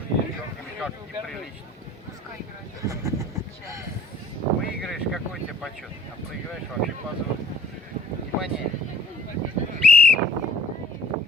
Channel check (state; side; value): normal; both; correlation 0.52